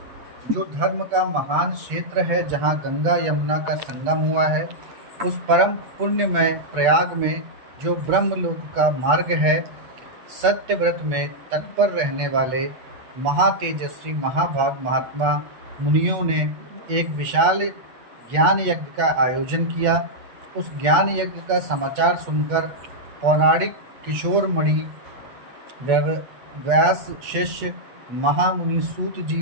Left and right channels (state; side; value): late; left; 8.1 ms